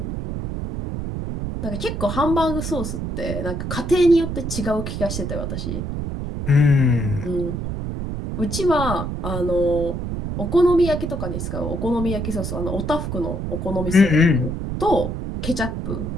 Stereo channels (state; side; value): noise; right; rumble, 4 dB below the sound